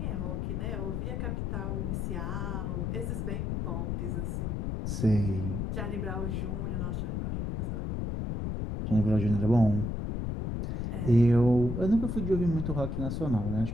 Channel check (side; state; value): left; noise; rumble, 2 dB below the sound